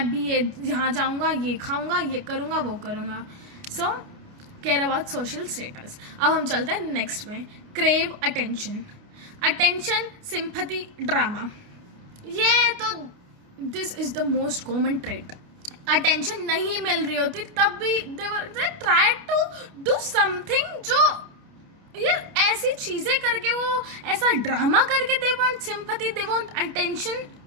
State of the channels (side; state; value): left; late; 29 ms